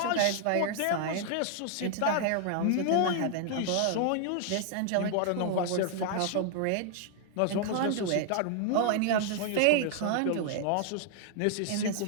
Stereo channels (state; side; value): different; both; correlation 0.00